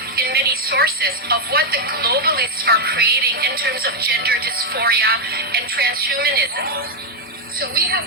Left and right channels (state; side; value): normal; both; correlation 0.01